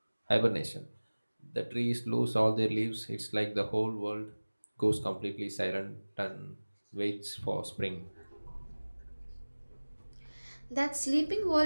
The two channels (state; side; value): inverted; both; correlation -1.00